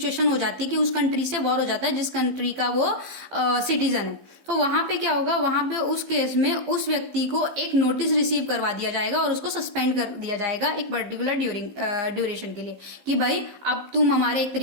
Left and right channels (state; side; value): late; left; 15 ms